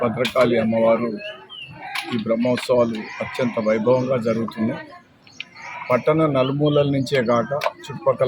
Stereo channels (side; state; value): both; identical; correlation 1.00